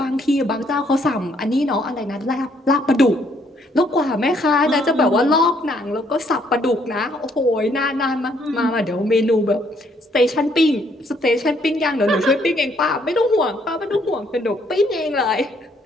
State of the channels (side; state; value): both; normal; correlation 0.68